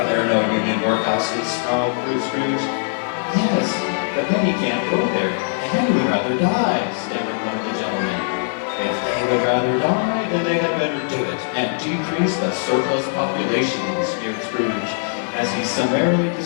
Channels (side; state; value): right; silent; 65 dB below the other